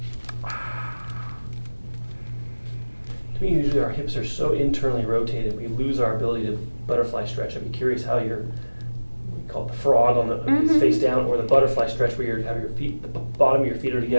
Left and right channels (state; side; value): inverted; both; correlation -1.00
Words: To me, usually our hips are so internally rotated, we lose our ability to butterfly stretch. I'd be curious how we call it the frog on the face down, or the butterfly stretch where you have your feet, the bottom of your feet are